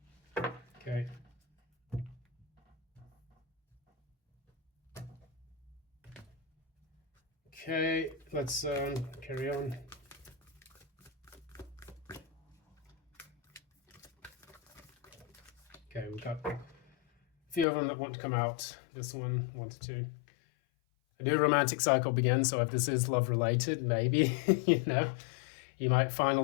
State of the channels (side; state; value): right; drops out; at 17.7 s